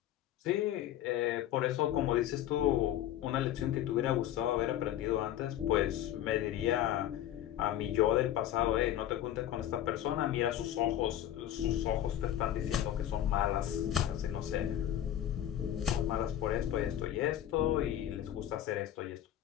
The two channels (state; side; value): quieter; right; 11.8 dB